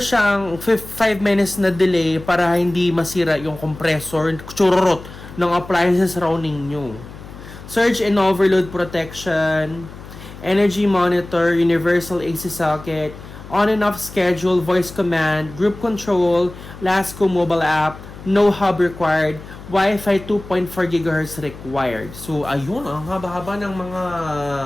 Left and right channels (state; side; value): noise; left; hum, 15 dB below the sound